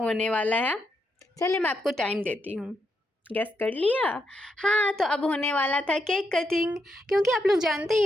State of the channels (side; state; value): both; normal; correlation 0.81